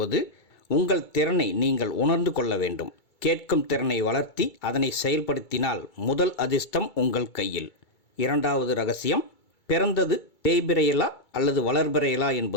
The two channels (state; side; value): late; right; 2.3 ms